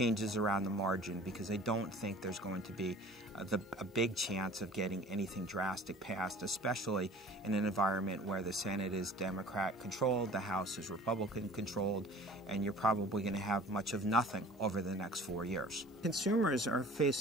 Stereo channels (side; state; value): both; normal; correlation 0.45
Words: around the margin because I don't think there's going to be a big chance of getting anything drastic passed, especially in an environment where the Senate is Democrat-controlled, the House is Republican-controlled, and you're probably going to have much of nothing over the next 4 years. Consumers are